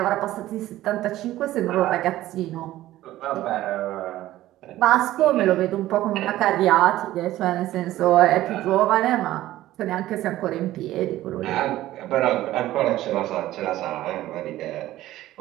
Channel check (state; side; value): quieter; left; 15.0 dB